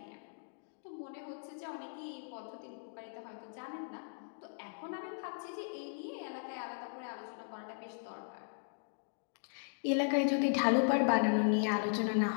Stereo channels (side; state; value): right; silent; digital silence